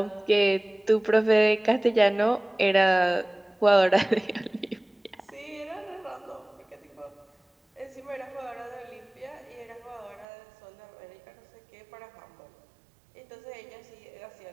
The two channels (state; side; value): drops out; left; at 10.2 s